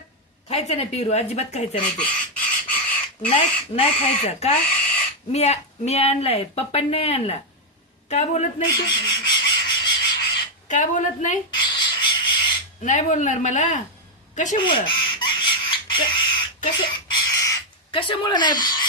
खायचं नाही पिरू, अजिबात खायचं नाही ते. नाही खायचं का? मी आणलाय, पप्पांनी नाही आणला. का बोलत नाही तू? का बोलत नाही? नाही बोलणार मला? कशामुळं? कशामुळं नाही?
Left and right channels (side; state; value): both; normal; correlation 0.01